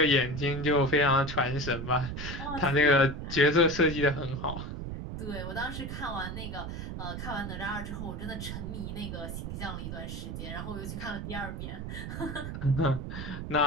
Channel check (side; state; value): right; noise; rumble, 6 dB below the sound